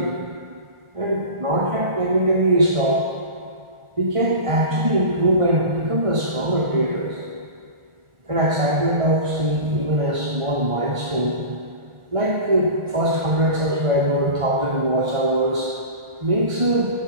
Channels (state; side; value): late; left; 1.4 ms